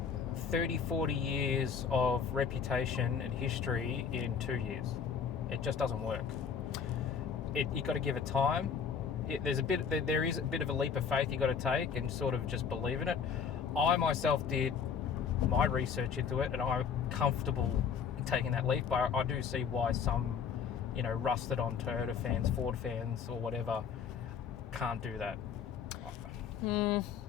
30, 40 years of reputation and history in 2 years. It just doesn't work. You got to give it time. There is a bit of a leap of faith you got to take and sort of just believe in it. I myself did my research into it, and I'm comfortable taking that leap. But I do see why some, rusted on Toyota fans, Ford fans, or whatever, can't do that.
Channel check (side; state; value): right; quieter; 6.7 dB